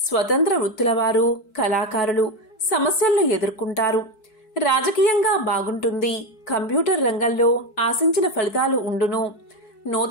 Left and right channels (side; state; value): right; late; 4.7 ms